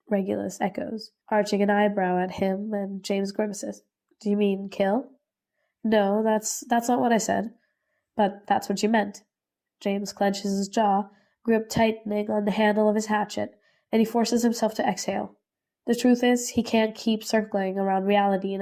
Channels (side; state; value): both; identical; correlation 1.00